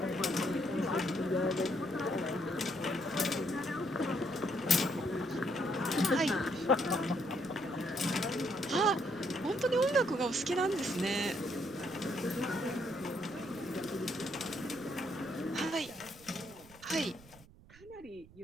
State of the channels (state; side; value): noise; right; rumble, 23 dB below the sound